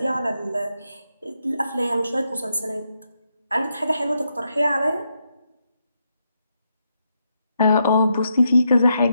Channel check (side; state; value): both; inverted; correlation -0.81